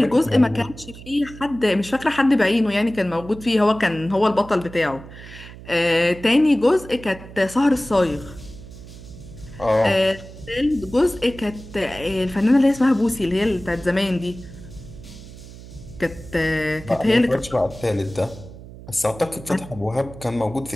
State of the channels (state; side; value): noise; right; hum, 16 dB below the sound